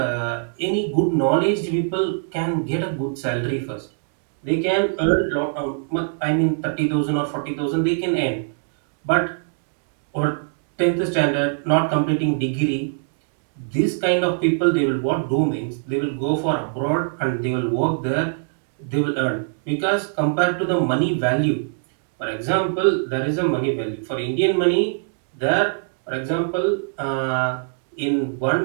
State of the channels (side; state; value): left; silent; digital silence